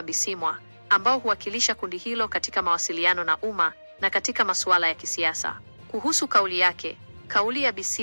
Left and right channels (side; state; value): both; inverted; correlation -1.00